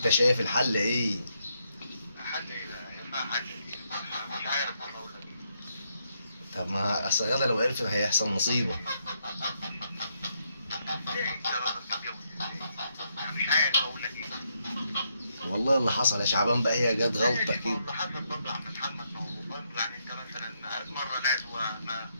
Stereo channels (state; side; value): inverted; both; correlation -0.78